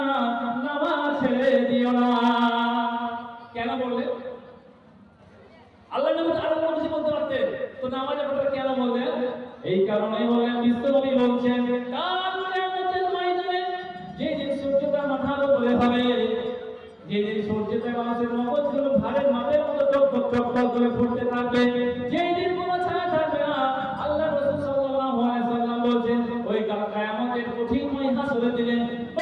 নামাজ ছেড়ে দিও না। কেন বললেন? আল্লাহ নবী আরো কিছু বলতে পারতেন, তো নামাজের কথা কেন বললেন? এই কারণেই বললেন, বিশ্বনবী বলছেন, কাল কিয়ামতের ময়দানে যেদিন সূর্যটা মাথার উপরে হবে, যেদিন সূর্যটা মানুষের মগজগুলো ভারের মাপের মতো টকটক টকটক করে ফুটতে থাকবে, যেদিন কোনো ছায়া থাকবে না, আল্লাহ রাসূল সাল্লাল্লাহু আলাইহি ওয়াসাল্লাম বলেন, ওই কাল কিয়ামতের কঠিন হাসরের দিনে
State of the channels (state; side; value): identical; both; correlation 1.00